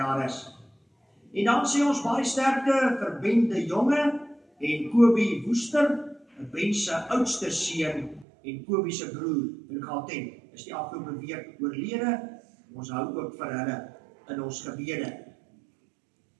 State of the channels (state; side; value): drops out; left; at 8.2 s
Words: is. En dan sê ons baie sterkte vir Ben de Jonge en Kobie Woester, Ben se oudste seun en Kobie se broer in Gauteng. Is die afgelope week oorlede. Ons hou ook vir hulle in ons gebede.